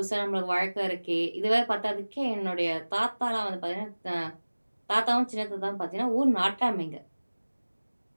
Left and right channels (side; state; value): both; inverted; correlation -1.00